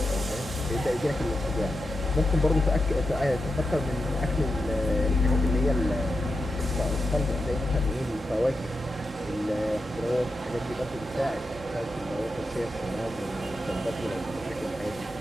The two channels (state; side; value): normal; both; correlation 0.88